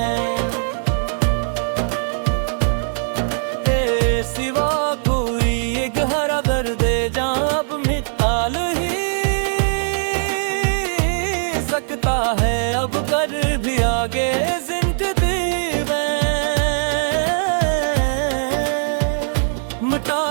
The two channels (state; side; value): silent; left; 66 dB below the other